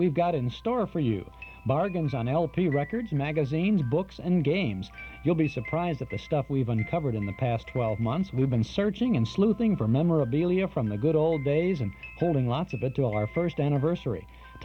got in store for you. Bargains on LP records, magazines, books, and games. You'll be surprised at the stuff we've uncovered in the past 12 months. We've been searching and sleuthing for memorabilia from the good old days and holding lots of it till our first anniversary.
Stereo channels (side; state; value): both; identical; correlation 1.00